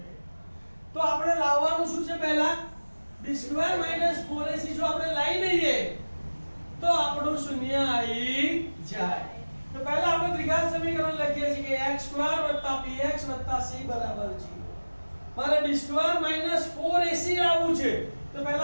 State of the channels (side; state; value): both; inverted; correlation -1.00